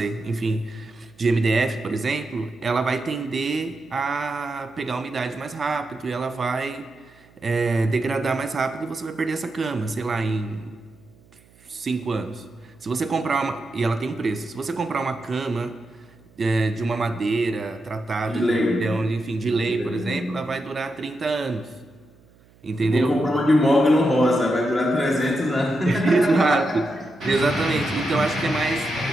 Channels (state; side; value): noise; right; hum, 29 dB below the sound